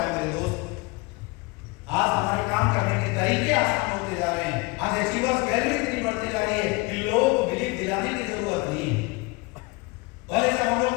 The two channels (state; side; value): quieter; right; 25.7 dB